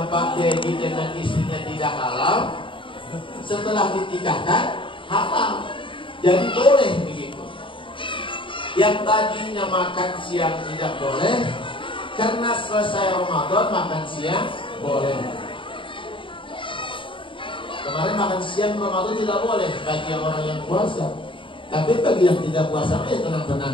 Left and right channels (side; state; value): right; late; 0.25 ms